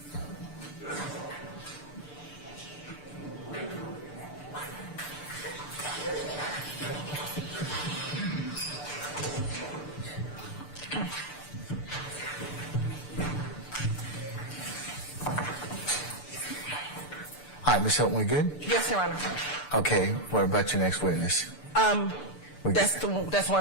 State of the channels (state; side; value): late; right; 6.8 ms